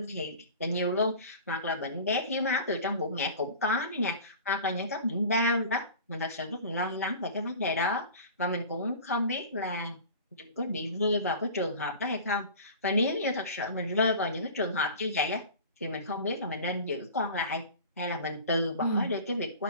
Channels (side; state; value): both; inverted; correlation -0.38